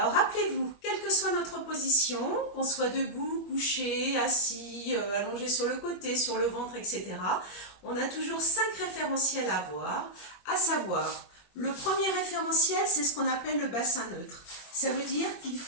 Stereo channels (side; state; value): right; late; 21 ms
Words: rappelez-vous, quelle que soit notre position, qu'on soit debout, couché, assis, allongé sur le côté, sur le ventre, etc., on a toujours 5 référentiels à avoir, à savoir, le premier référentiel, c'est ce qu'on appelle le bassin neutre. Ça veut dire qu'il